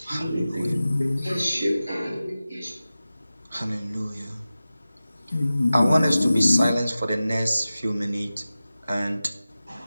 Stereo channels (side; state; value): both; inverted; correlation -0.95